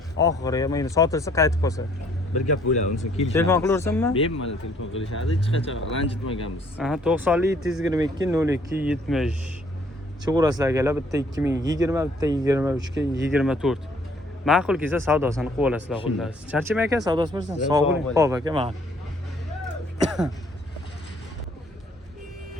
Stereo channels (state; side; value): normal; both; correlation 0.62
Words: Oxiriga mana sotilsa qaytib qolsa. Bir gap bo'ladi, unisi kelishadi. Telefon qilaversammi? Bemalol telefon qilishadi, hech qachon ranjitmaganmiz. Aha, 90 722 02 70. Chiqurasizlar akalar, bitta 2020, bitta 23 ga 24. Ma'qul kelsa savdosini qilib olasizlar xullas. Charchamay aka, savdosi bo'lsin. Sog' bo'ling. Xo'p aka, ma'qul.